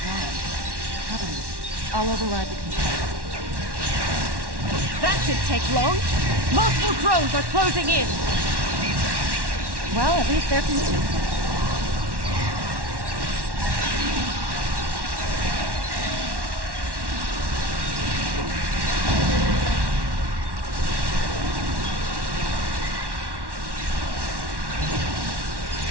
wrong. Cover me. I'll override the control. That didn't take long. Multiple drones are closing in. Well, at least they're consistent.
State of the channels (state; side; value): late; left; 1.1 ms